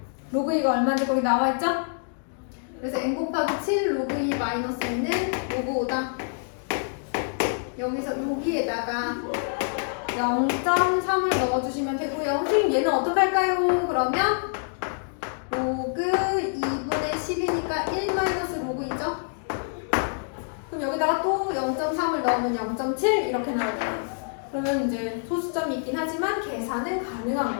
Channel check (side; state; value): right; silent; digital silence